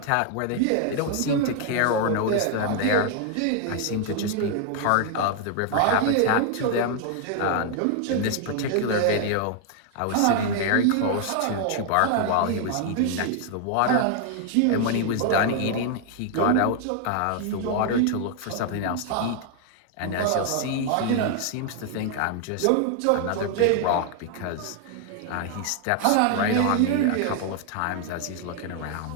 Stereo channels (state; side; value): different; both; correlation 0.00